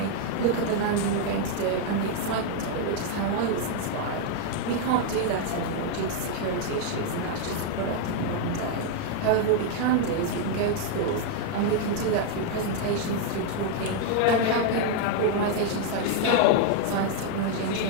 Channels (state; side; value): different; both; correlation 0.00